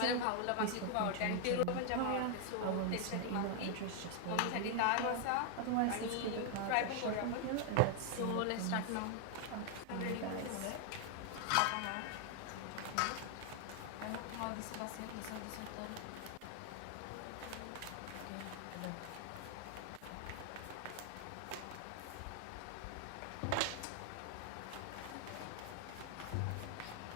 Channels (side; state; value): both; different; correlation 0.00